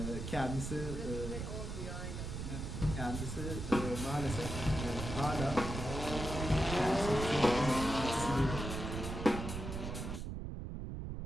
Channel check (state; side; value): noise; right; rumble, 5 dB below the sound